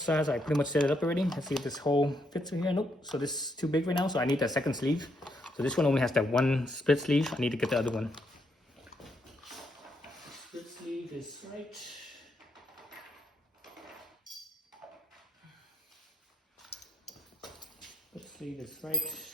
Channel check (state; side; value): normal; both; correlation 0.77